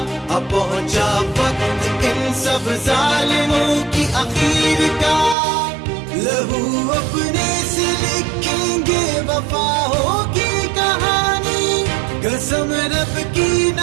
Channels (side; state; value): left; drops out; at 5.4 s